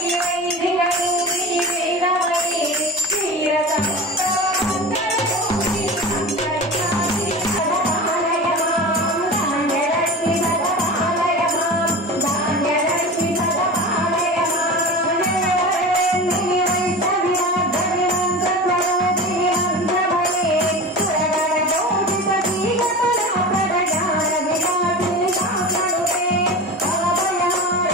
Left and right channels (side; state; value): both; normal; correlation 0.31